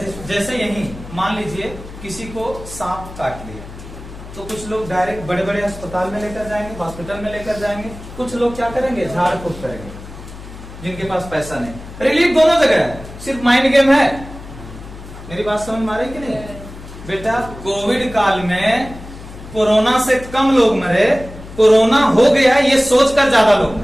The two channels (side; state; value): left; noise; hum, 15 dB below the sound